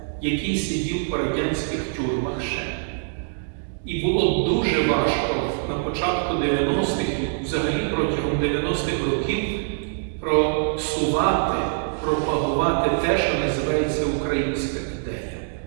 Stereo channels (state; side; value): silent; left; digital silence